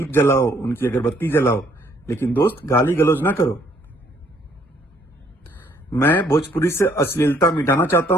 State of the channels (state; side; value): normal; both; correlation 0.65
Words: जलाओ, उनकी अगरबत्ती जलाओ, लेकिन दोस्त गाली गलौज ना करो। मैं भोजपुरी से अश्लीलता मिटाना चाहता